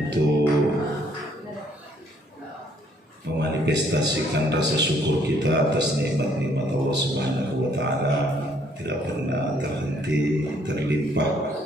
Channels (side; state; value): both; normal; correlation 0.65